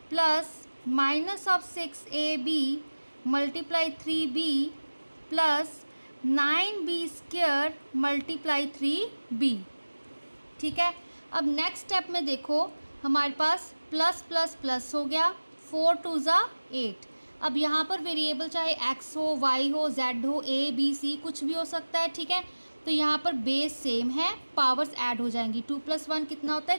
plus -6ab × 3b plus 9b² × 3b। ठीक है, अब नेक्स्ट स्टेप में देखो हमारे पास प्लस प्लस प्लस हो गया, 4 × 2 = 8। अब यहाँ पर वेरिएबल चाहे x हो, y हो, z हो, a b c कुछ भी हो सकता है। ठीक है, तो यहाँ पर बेस सेम है, पावर्स ऐड हो जाएंगी, 2 + 1 कितना होता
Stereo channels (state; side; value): inverted; both; correlation -1.00